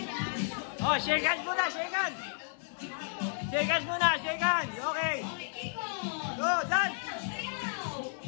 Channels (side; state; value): right; silent; digital silence